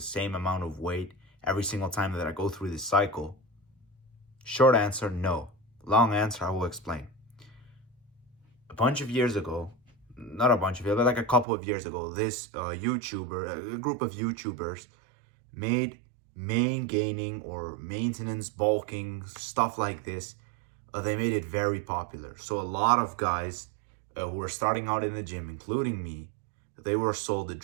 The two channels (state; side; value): drops out; left; at 11.5 s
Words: same amount of weight every single time that I go through this cycle? Short answer, no. Long answer, I will explain. A bunch of years ago, not a bunch of years, but like a couple of years ago, this a group of YouTubers made main gaining or maintenance bulking, stuff like this. They made it very popular. So a lot of guys who were starting out in the gym, including me, they were sold a